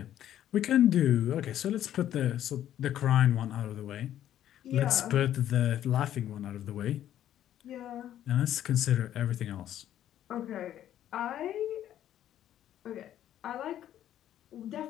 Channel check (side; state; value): right; quieter; 11.5 dB